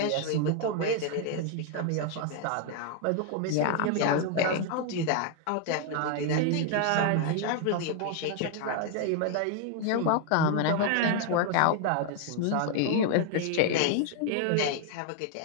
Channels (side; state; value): both; different; correlation 0.00